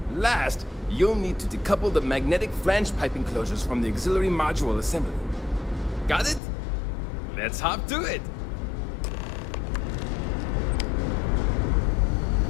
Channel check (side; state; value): right; drops out; at 6.4 s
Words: Last, you'll need to decouple the magnetic flange pipe enclosures from the auxiliary module assembly. Got it? Let's hop to it!